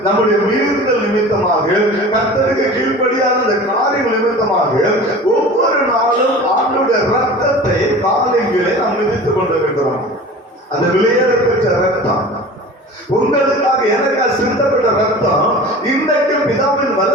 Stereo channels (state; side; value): normal; both; correlation 0.38